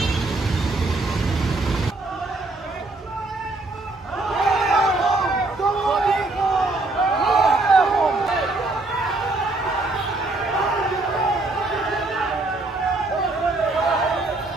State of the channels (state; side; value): quieter; left; 3.0 dB